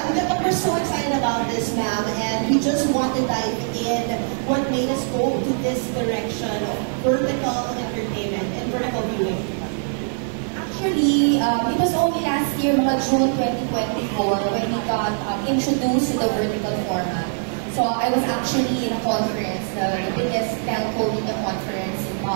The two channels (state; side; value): silent; left; digital silence